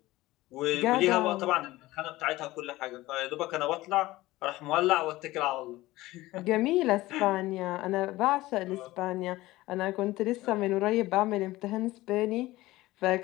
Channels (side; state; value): right; quieter; 18.0 dB